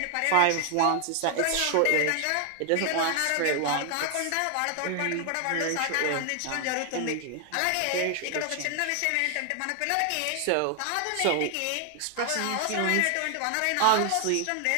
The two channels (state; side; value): different; both; correlation 0.00